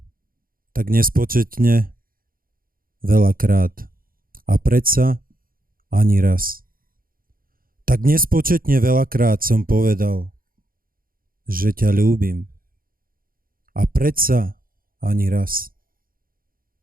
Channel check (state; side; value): late; left; 0.42 ms